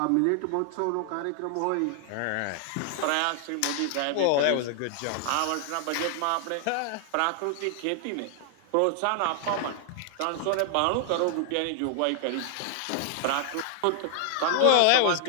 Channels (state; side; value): different; both; correlation 0.00